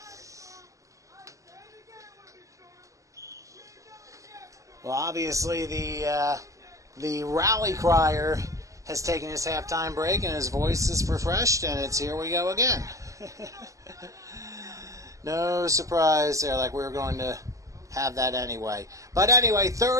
Well, obviously the rally crier has taken his halftime break and his voice is refreshed, and it's here we go again. No surprise there, like we were going to have that anyway. But anyway,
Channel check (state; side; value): late; left; 0.16 ms